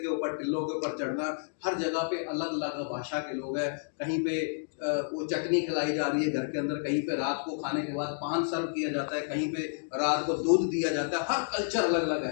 के ऊपर, टिल्लों के ऊपर चढ़ना। हर जगह पे अलग अलग भाषा के लोग हैं। कहीं पे वो चटनी खिलाई जा रही है घर के अंदर, कहीं पे रात को खाने के बाद पान सर्व किया जाता है, कहीं पे रात को दूध दिया जाता है। हर कल्चर अलग अलग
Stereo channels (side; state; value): right; silent; digital silence